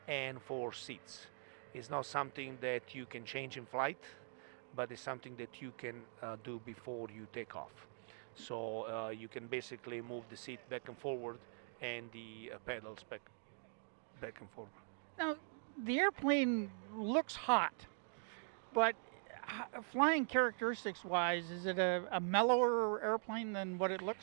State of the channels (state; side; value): silent; left; digital silence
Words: and for seats. It's not something that you can change in flight, but it's something that you can do before you take off. So you can basically move the seat back and forward and the pedals back and forward. Now, the airplane looks hot, but flying characteristics wise, is it a mellower airplane than what it